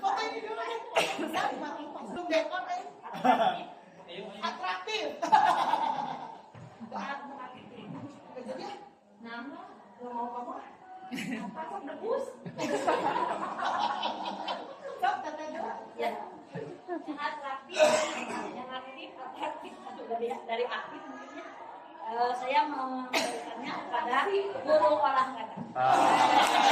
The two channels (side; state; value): both; identical; correlation 1.00